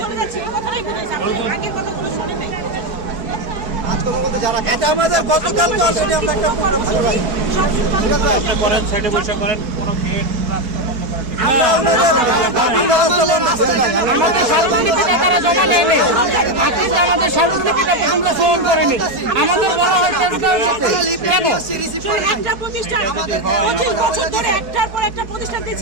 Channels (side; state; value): left; late; 4.6 ms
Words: যাচ্ছি। এই কথাটাই বুঝেছি, আগের কথাগুলো শুনে নাই। এটা আমাদের গতকালকে অলরেডি আমরা একটা প্রোগ্রাম করেছি। আপনি করেন, সাইডে বসে করেন, কোনো গেট রাস্তা বন্ধ করেন। আমরা রাস্তা বন্ধ করে আমাদের সর্বনিকটে তারা জমা নেয়নি, আমাদের সর্বনিকটে আমরা ফোন করিনি। আমাদের বলা হয়েছে একটা প্রতিষ্ঠান 25 বছর ধরে একটার পর একটা প্রতিষ্ঠান